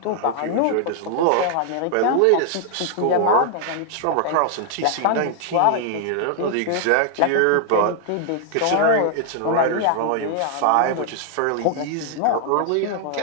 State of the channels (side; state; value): both; different; correlation 0.00